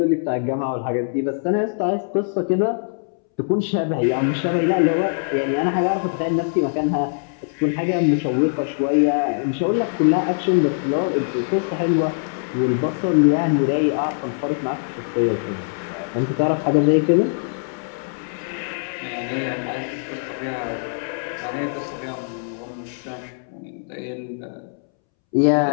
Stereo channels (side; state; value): right; silent; 64 dB below the other